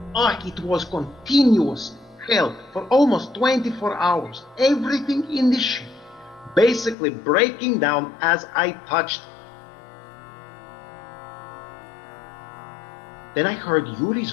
It was continuous hell for almost 24 hours. Everything in the ship basically breaking down as I touched it. Then I heard Yuri's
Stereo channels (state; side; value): drops out; right; at 7.0 s